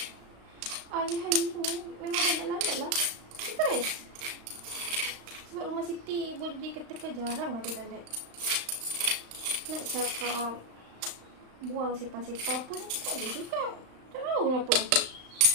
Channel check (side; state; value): left; late; 35 ms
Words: hari-hari ni memang banyak lalat lah. Stres. Sebab rumah Siti boleh dikatakan jarang ada lalat. Nak cakap buang sepah-sepah pun tak ada juga. Tak tahu kenapa.